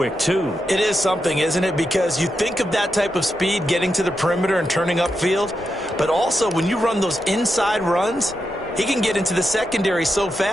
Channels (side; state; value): both; normal; correlation 0.86